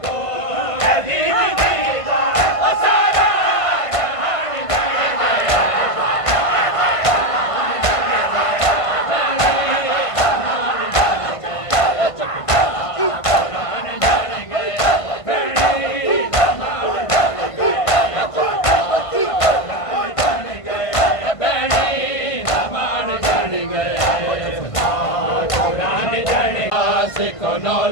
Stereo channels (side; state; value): right; late; 1.5 ms